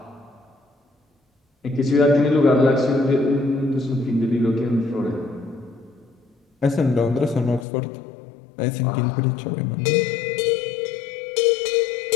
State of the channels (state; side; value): drops out; right; at 7.7 s